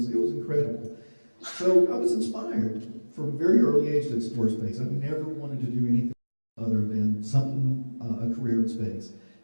incredible. So I was inspired from a very early age to explore space. I've never wanted to do anything other than a career in space.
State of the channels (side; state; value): both; inverted; correlation -1.00